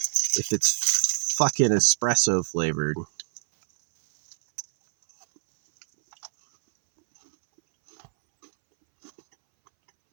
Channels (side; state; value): left; silent; 62 dB below the other